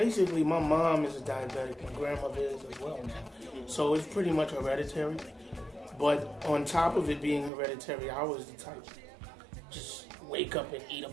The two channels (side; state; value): left; drops out; at 7.5 s